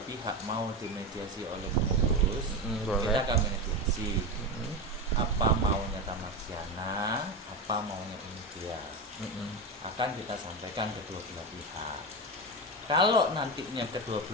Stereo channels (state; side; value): normal; both; correlation 0.18